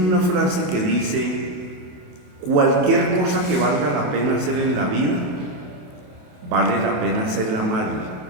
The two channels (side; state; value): left; late; 28 ms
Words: frase que dice: cualquier cosa que valga la pena hacer en la vida, vale la pena hacerla mal,